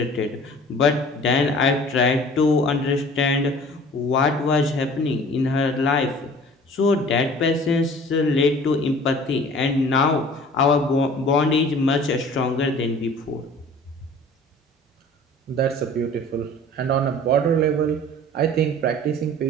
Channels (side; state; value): both; normal; correlation 0.46